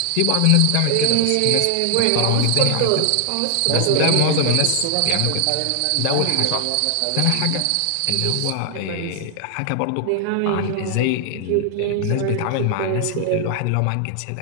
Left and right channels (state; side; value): different; both; correlation 0.00